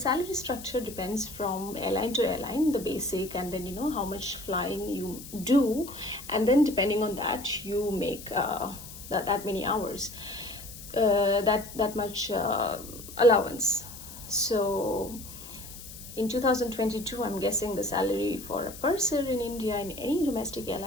structure depends from airline to airline, the basic, and then how much flying you do, and then depending on that you make that many hours, that much allowance. So in 2022, I'm guessing the salary for a purser in India in any domestic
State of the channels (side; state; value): left; noise; hiss, 14 dB below the sound